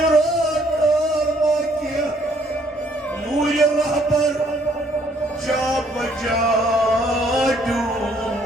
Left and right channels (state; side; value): normal; both; correlation 0.65